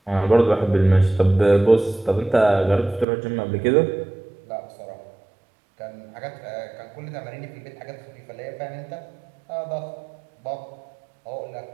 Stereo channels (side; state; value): left; drops out; at 3.1 s